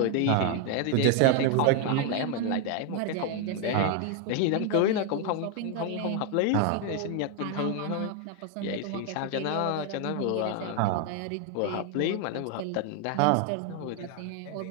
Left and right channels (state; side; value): different; both; correlation 0.01